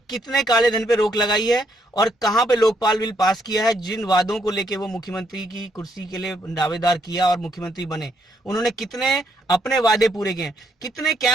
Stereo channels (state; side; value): normal; both; correlation 0.73